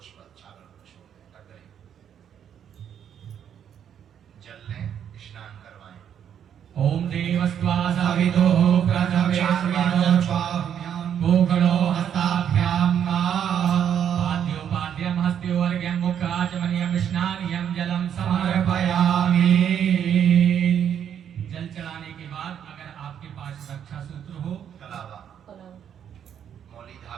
चावल छोड़ दें। जल लें, स्नान करवाएं। ओम देवस्त्वा सवितो प्रथमेस्मिनो भूगलो हस्ताभ्यां पाद्योपाद्यं हस्त्योर्घ्यं मुखाचमनीयं स्नानियं जलं समर्पयामि। जल चढ़ाने के बाद अगर आपके पास रक्षा सूत्र हो, कलावा मौली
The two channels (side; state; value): left; quieter; 9.0 dB